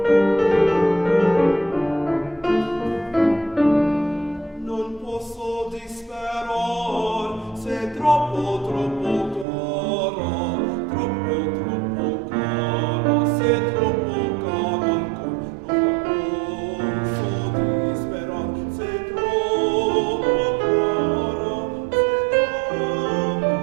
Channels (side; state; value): left; drops out; at 9.5 s